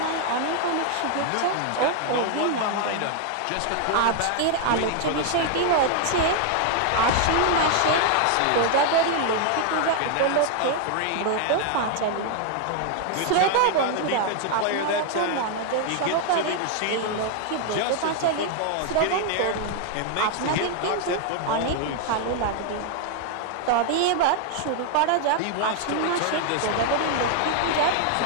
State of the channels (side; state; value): both; different; correlation 0.00